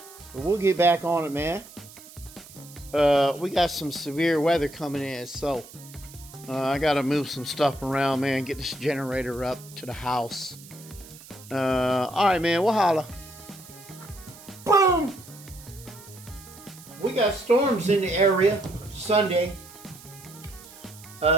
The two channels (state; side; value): noise; right; hiss, 19 dB below the sound